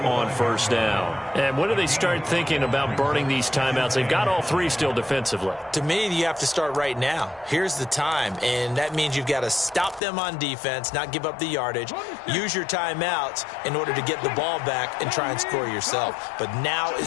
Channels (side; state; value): right; drops out; at 10.0 s